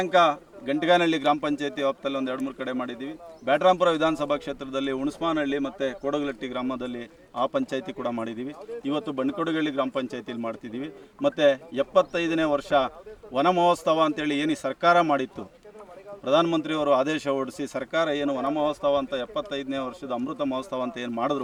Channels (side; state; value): both; identical; correlation 1.00